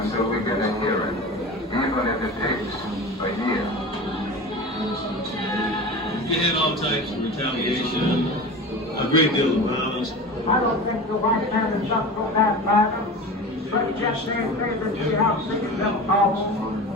we get a hearing, even if it takes a year. We had all types of retaliation, a great deal of violence. I don't think the white man is up for that matter, but just they see how sick it them.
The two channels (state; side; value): normal; both; correlation 0.32